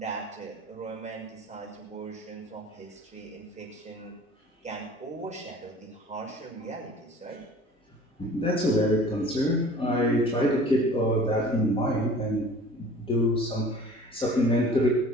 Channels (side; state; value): both; normal; correlation 0.46